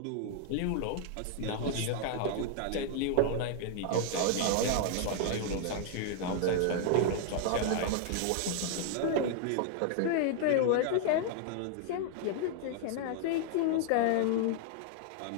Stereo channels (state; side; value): different; both; correlation 0.00